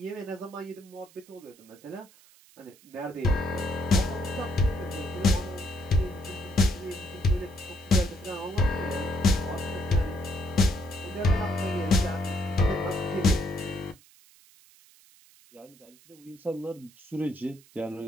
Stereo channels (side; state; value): right; noise; hiss, 26 dB below the sound